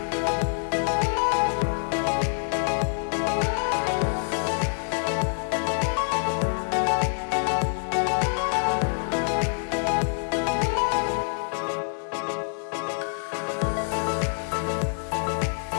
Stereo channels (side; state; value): right; silent; digital silence